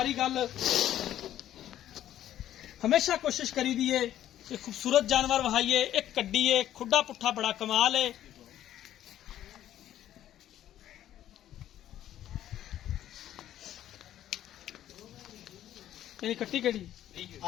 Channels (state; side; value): quieter; right; 12.0 dB